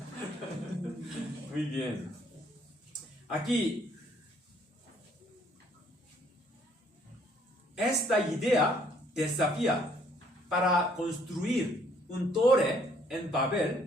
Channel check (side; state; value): both; normal; correlation 0.64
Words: Muy bien. Aquí, esta idea desafía para construir un torre en